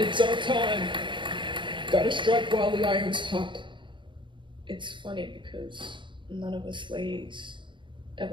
our time. Gotta strike while the iron's hot. It's funny because none of us ladies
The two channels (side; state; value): left; late; 0.23 ms